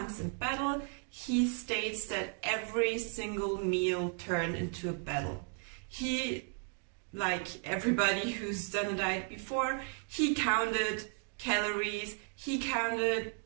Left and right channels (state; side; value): quieter; left; 35.8 dB